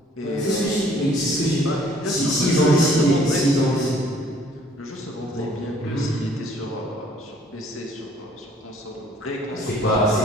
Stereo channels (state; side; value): normal; both; correlation 0.58